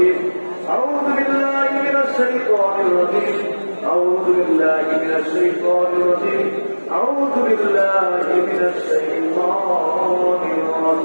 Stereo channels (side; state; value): both; inverted; correlation -1.00